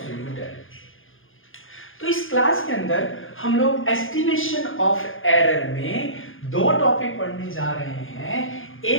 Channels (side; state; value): right; late; 0.59 ms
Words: एरर. तो इस क्लास के अंदर हम लोग एस्टिमेशन ऑफ एरर में दो टॉपिक पढ़ने जा रहे हैं.